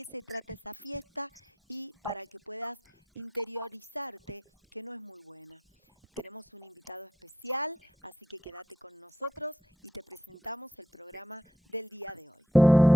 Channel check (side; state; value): both; normal; correlation 0.80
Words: se trata esa fiesta y para que puedas interiorizarte que no es muy buena. Tenemos un invitado especial, así que quédate con nosotros y te presentamos el programa del día de hoy.